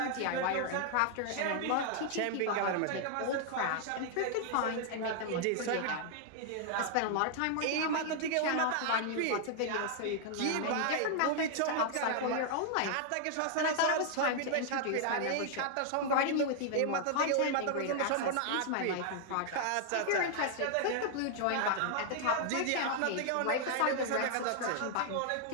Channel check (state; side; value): different; both; correlation -0.01